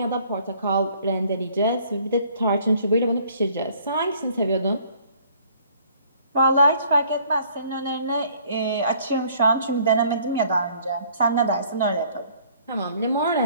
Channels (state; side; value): inverted; both; correlation -0.58